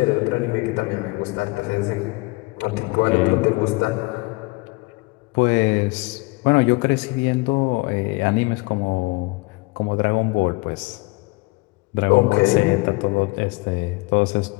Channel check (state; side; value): quieter; right; 25.2 dB